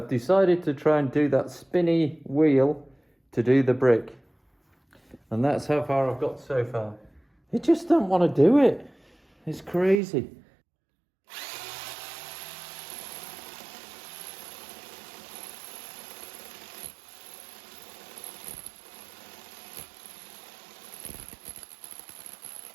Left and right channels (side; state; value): left; drops out; at 10.0 s